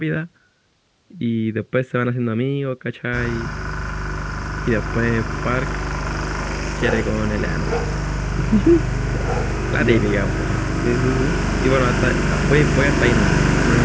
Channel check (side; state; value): both; identical; correlation 1.00